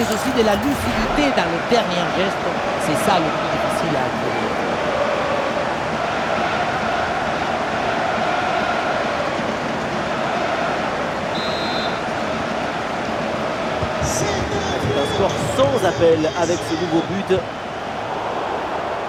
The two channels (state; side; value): identical; both; correlation 1.00